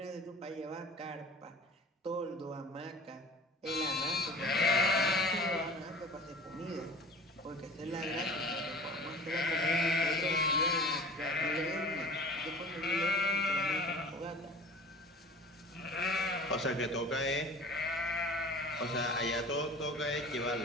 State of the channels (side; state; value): both; normal; correlation 0.42